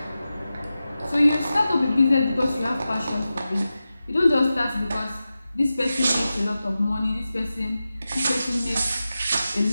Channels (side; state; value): both; inverted; correlation -0.93